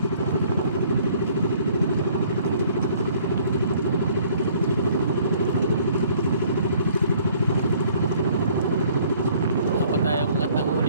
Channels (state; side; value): inverted; both; correlation -0.58